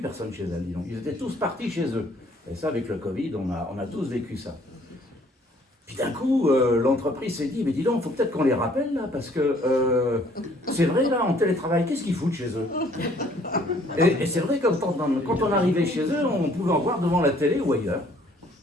personne chez elle, dis donc. Ils étaient tous partis chez eux. Et ça, avec le Covid, on a tous vécu ça. Puis d'un coup, l'entreprise s'est dit, mais dis donc, il faut peut-être qu'on les rappelle là, parce que c'est vrai, là, en télétravail, qu'est-ce qu'ils foutent chez eux? Et c'est vrai que quand on arrivait chez eux, on pouvait en voir devant la télé ou ailleurs.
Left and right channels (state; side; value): normal; both; correlation 0.60